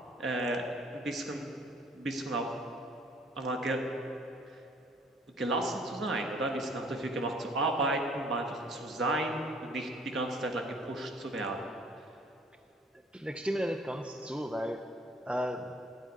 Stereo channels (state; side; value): normal; both; correlation 0.57